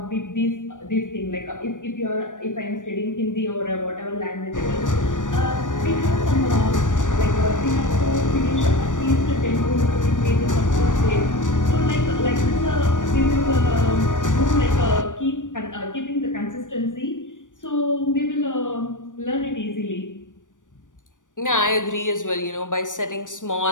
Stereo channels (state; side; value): late; right; 0.87 ms